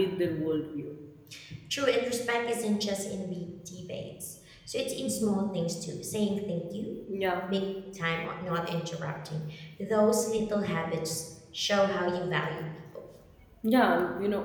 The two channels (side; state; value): both; identical; correlation 1.00